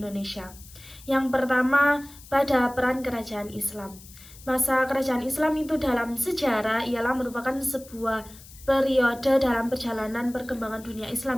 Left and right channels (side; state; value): left; noise; hiss, 20 dB below the sound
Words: Yang pertama, pada peran kerajaan Islam. Masa kerajaan Islam itu dalam sejarah ialah merupakan sebuah periode dalam perjalanan perkembangan dunia